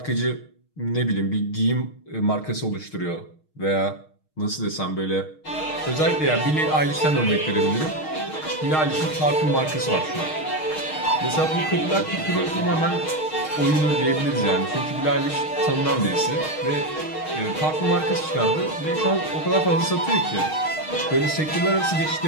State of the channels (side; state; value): right; late; 6.4 ms